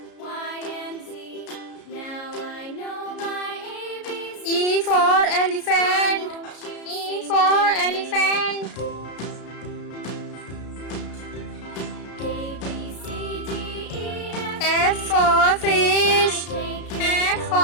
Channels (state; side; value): late; right; 33 ms